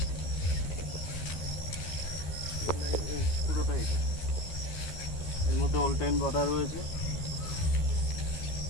এই পুরোটা এটা। এর মধ্যে অল টাইম বাঁধা রয়েছে।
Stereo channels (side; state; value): right; late; 13 ms